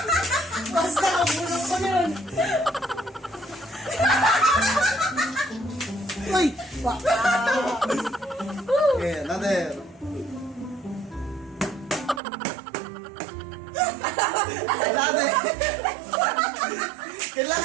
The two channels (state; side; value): drops out; left; at 12.2 s